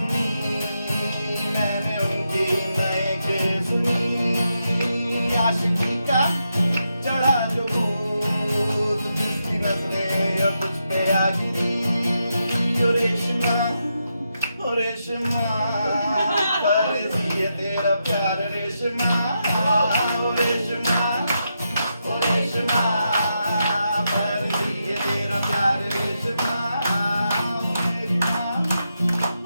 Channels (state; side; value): inverted; both; correlation -0.84